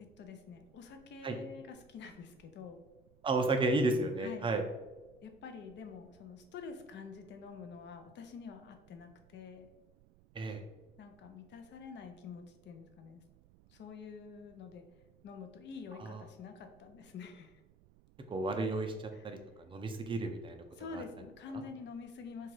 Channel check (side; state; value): right; noise; rumble, 25 dB below the sound